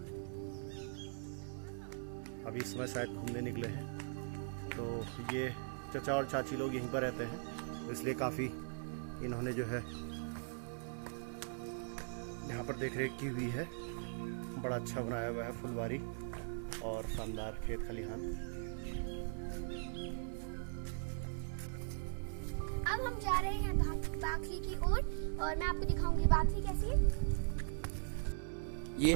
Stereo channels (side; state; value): left; silent; digital silence